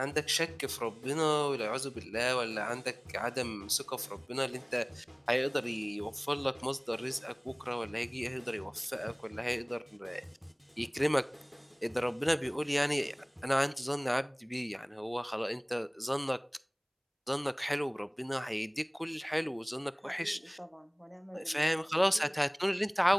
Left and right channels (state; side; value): identical; both; correlation 1.00